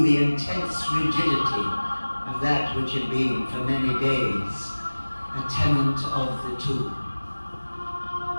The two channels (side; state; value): both; inverted; correlation -1.00